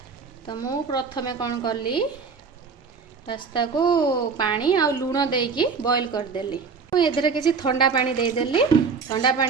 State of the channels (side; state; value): left; quieter; 5.2 dB